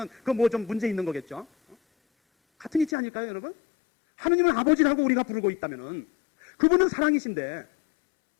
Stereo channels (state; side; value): drops out; right; at 2.9 s